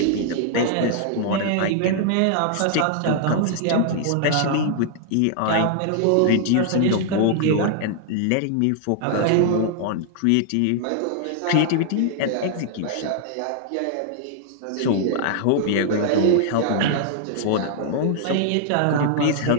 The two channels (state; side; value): different; both; correlation -0.01